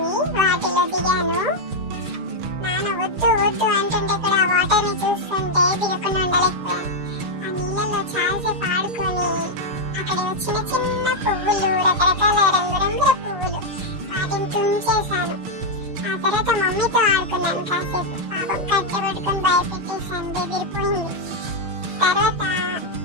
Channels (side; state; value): left; late; 6.5 ms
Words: వాటిలో దిగాను. నాన్న వద్దు అంటుంటే కూడా ఆ వాటర్ ని చూస్తుంటే దిగకుండా ఉండలేకపోయాను. ఆ నీళ్ళలో చాలాసేపు ఆడుకొని అక్కడ చిన్న చిన్న పువ్వులు, రకరకాల రంగురంగుల పువ్వులు, వాటిని తుంచేశాను. ఆ తర్వాత మమ్మీతో ఆడుకున్నాను కాసేపు. పాపం కట్టె పట్టుకొని భయపెట్టేశాను, బెదిరిపోయింది. తర్వాత